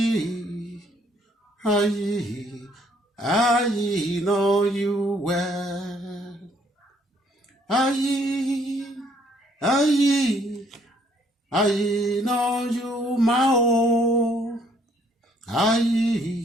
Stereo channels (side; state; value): both; normal; correlation 0.65